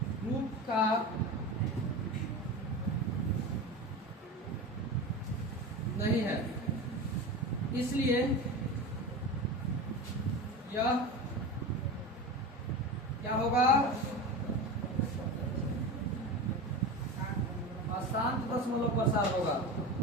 रूप का नहीं है, इसलिए यह क्या होगा, अशांत दशमलव प्रसार होगा,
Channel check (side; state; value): both; normal; correlation 0.27